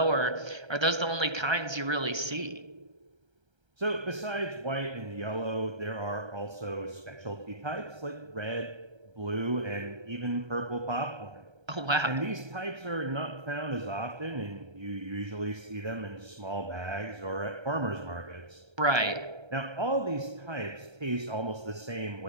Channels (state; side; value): late; left; 1.3 ms